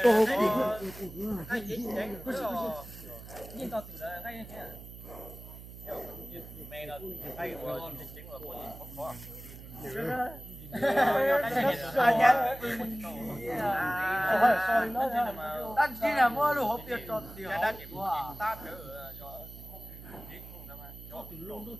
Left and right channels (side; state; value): right; noise; hum, 15 dB below the sound